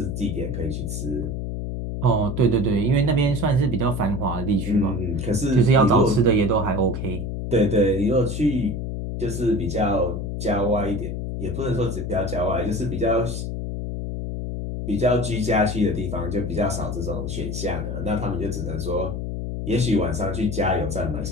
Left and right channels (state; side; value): noise; left; hum, 4 dB below the sound